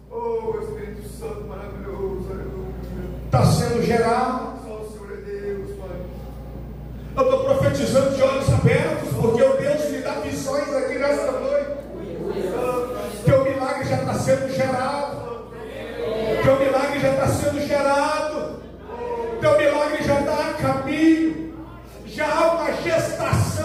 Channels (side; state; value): both; identical; correlation 1.00